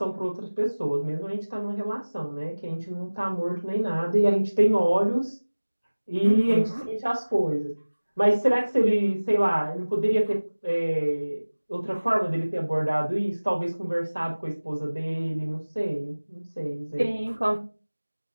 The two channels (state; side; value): inverted; both; correlation -1.00